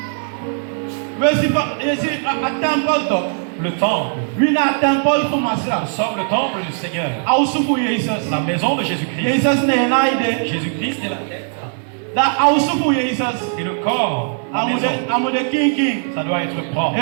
Le temple. Nous sommes le temple du Seigneur. La maison de Jésus-Christ. Jésus-Christ est la tête. Et le corps, la maison, ça doit être propre.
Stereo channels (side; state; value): left; silent; 67 dB below the other